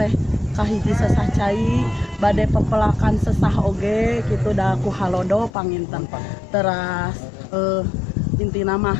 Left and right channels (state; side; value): drops out; right; at 5.5 s